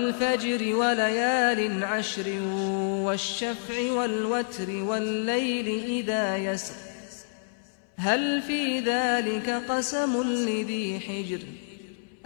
وليال عشر والشفع والوتر والليل إذا يسر هل في ذلك قسم لذي حجر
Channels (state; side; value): silent; right; 59 dB below the other